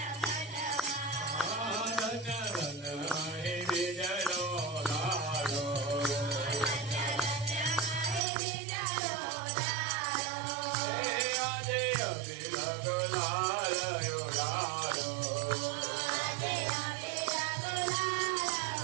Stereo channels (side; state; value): left; drops out; at 8.2 s